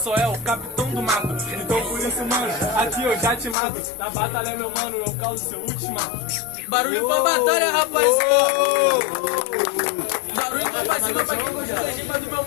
é o capitão do mato. Então por isso, mano, aqui eu já te mato. Na batalha, meu mano, eu causo seu ultimato. Barulho pra batalha, rapaziada. Barulho pra cima pra quem gostou da rima do meu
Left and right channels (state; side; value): drops out; right; at 3.6 s